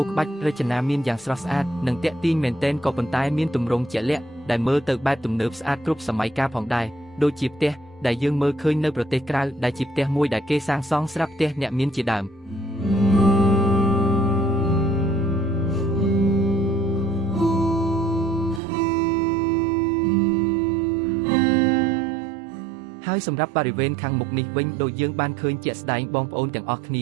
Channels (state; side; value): drops out; left; at 18.6 s